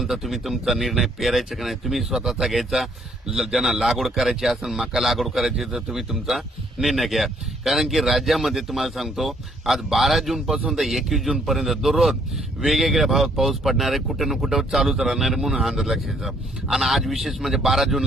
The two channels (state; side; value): normal; both; correlation 0.66